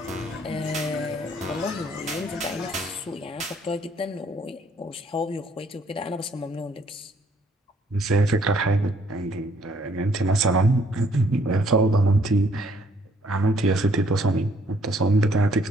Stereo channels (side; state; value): both; normal; correlation 0.64